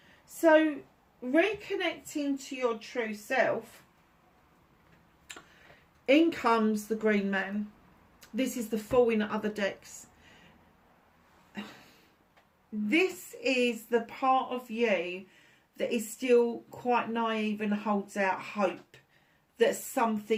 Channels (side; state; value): both; identical; correlation 1.00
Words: So, reconnecting to your true self, in comes the Green Man. This is the Fool in other decks. This is the part of you that is still quite naive and holds out hope that